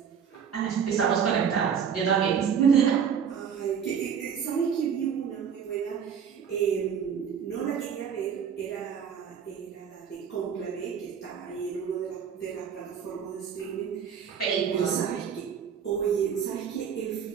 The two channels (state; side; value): quieter; left; 7.5 dB